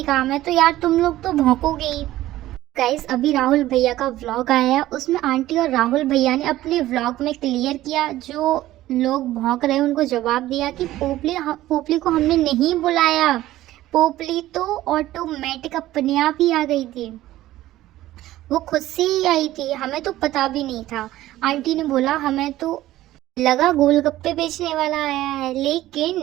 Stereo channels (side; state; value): left; quieter; 15.2 dB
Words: काम है, तो यार तुम लोग तो भौंकोगे ही। गाइस अभी राहुल भैया का व्लॉग आया है, उसमें आंटी और राहुल भैया ने अपने व्लॉग में क्लियर किया, जो लोग भौंक रहे हैं उनको जवाब दिया कि पोपली को हमने नहीं बुलाया, पोपली तो ऑटोमेटिक अपने आप ही आ गई थी, वो खुद से ही आई थी, हमें तो पता भी नहीं था। आंटी ने बोला हमें तो लगा गोलगप्पे बेचने वाला आया है,